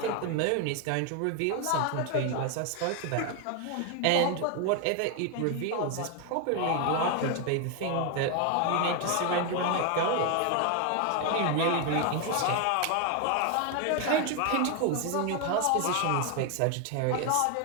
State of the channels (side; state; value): both; different; correlation 0.01